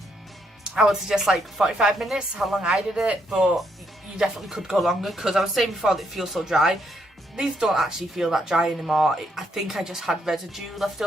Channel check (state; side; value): normal; both; correlation 0.75